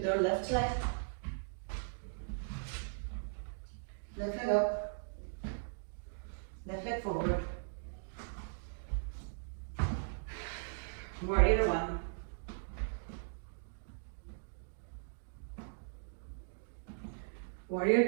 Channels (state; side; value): silent; left; digital silence